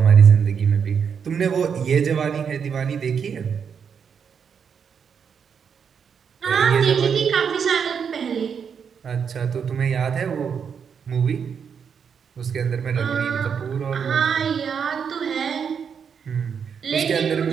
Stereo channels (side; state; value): left; quieter; 6.9 dB